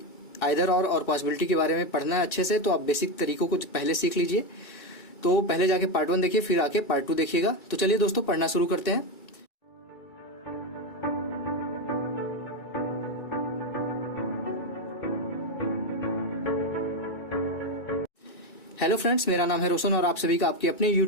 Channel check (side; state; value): right; late; 2.3 ms